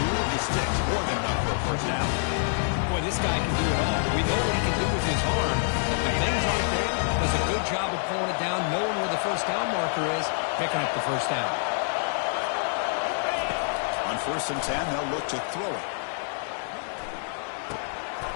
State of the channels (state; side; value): silent; right; digital silence